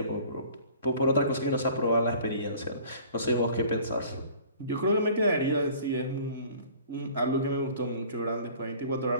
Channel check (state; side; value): inverted; both; correlation -0.48